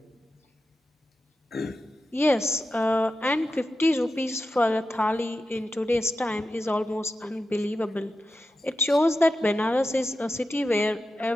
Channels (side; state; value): both; normal; correlation 0.91